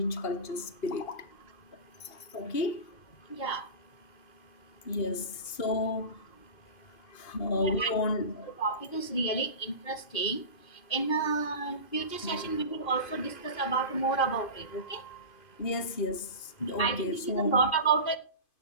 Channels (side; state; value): right; late; 2.5 ms